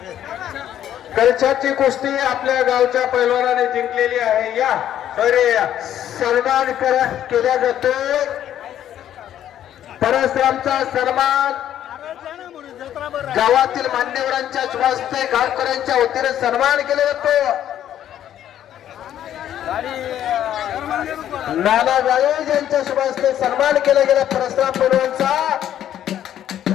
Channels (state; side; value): quieter; right; 11.0 dB